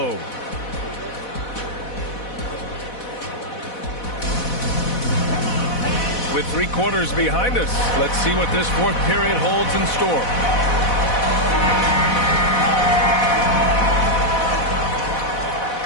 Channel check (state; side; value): late; right; 4.1 ms